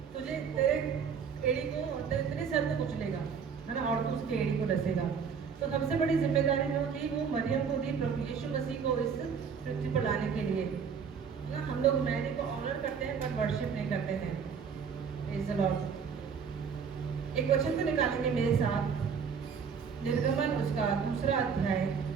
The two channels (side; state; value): left; quieter; 6.5 dB